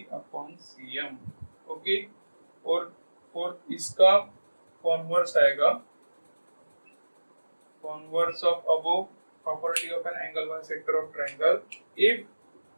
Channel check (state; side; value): inverted; both; correlation -1.00